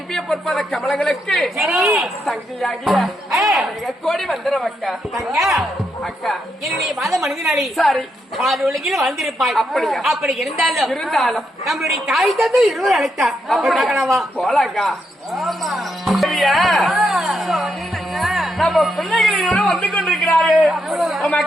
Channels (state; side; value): normal; both; correlation 0.81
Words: பொற்பத கமலங்களுக்கு தங்கையாகிய கோடி வந்துடும் அக்கா. அக்கா என்னுடைய மாத மனிதனாளி சாரி பாதி உலகில் வந்திருப்பாய். அப்படியா? அப்படி இருந்தாலும் நம்மளுடைய தாய் தந்தை இருவர் அழைத்தார். அப்படி போலாக்கா. நம்ம பிள்ளைகளோட வந்து கொண்டிருக்கிறாரு.